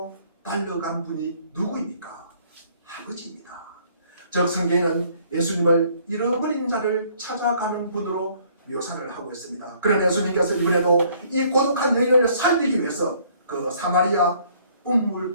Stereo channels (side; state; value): both; inverted; correlation -0.61